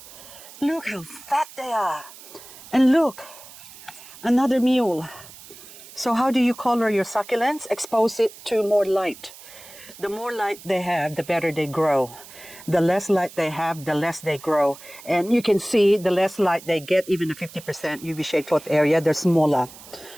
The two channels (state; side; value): noise; right; hiss, 18 dB below the sound